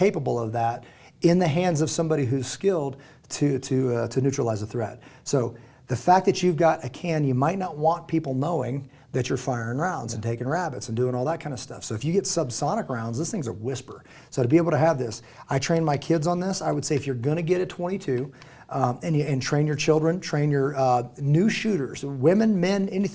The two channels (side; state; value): both; identical; correlation 1.00